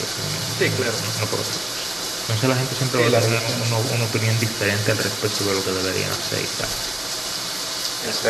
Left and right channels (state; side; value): noise; right; rumble, 29 dB below the sound